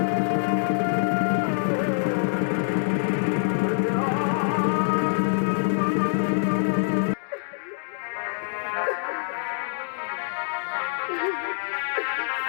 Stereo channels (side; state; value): right; silent; digital silence